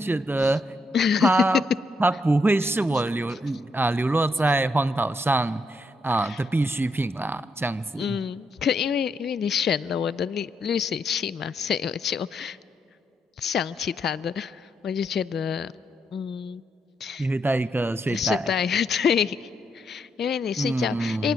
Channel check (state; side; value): normal; both; correlation 0.78